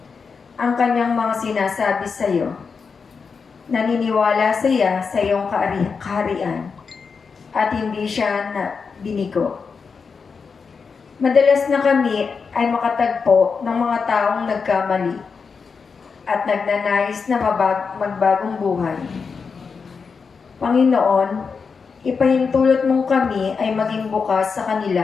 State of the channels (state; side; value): quieter; right; 5.4 dB